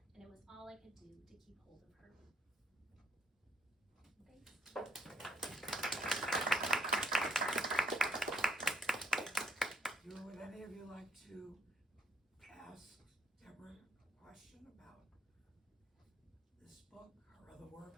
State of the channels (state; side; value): normal; both; correlation 0.72